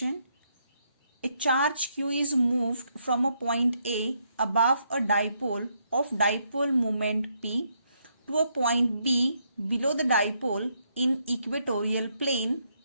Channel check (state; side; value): inverted; both; correlation -0.75